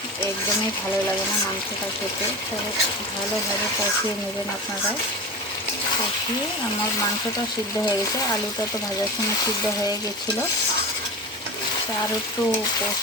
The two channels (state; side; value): normal; both; correlation 0.28